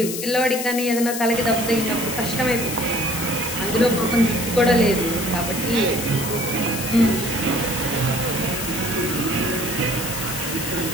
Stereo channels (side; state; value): left; noise; hiss, 5 dB below the sound